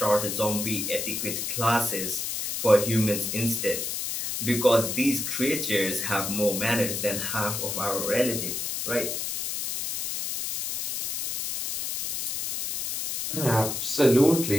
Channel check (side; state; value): left; noise; hiss, 3 dB below the sound